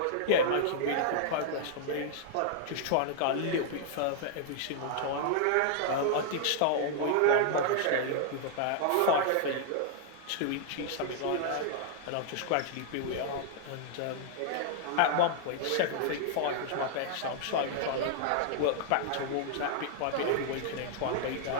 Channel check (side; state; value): both; different; correlation -0.01